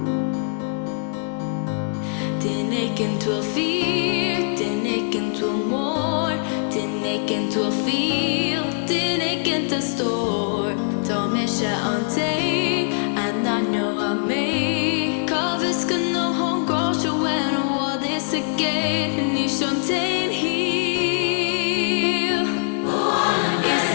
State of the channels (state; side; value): silent; right; digital silence